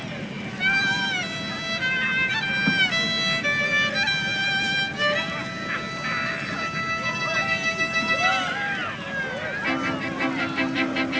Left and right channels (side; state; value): both; identical; correlation 1.00